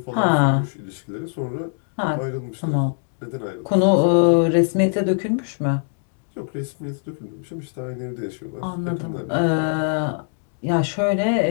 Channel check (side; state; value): right; silent; digital silence